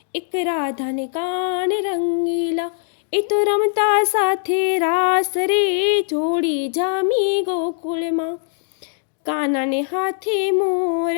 એક રાધાને કાન રંગીલા, એ તો રમતા સાથે રાસ રે જોડી જામી ગોકુળમાં. કાનાને હાથે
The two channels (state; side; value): silent; right; digital silence